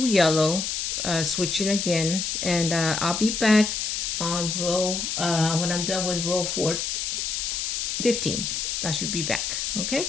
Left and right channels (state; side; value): noise; left; hiss, 1 dB below the sound